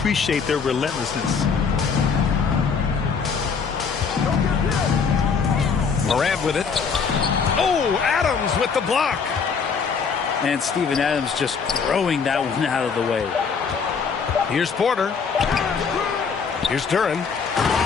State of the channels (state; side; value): quieter; right; 5.8 dB